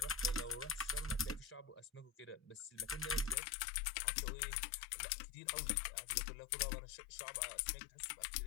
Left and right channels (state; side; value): drops out; right; at 3.4 s